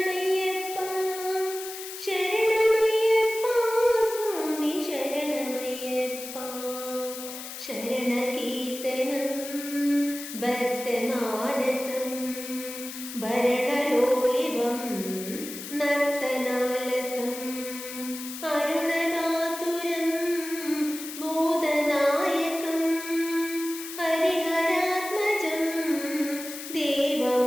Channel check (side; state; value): left; noise; hiss, 10 dB below the sound